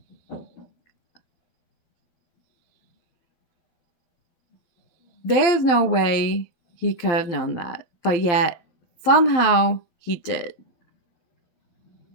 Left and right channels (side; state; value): right; late; 12 ms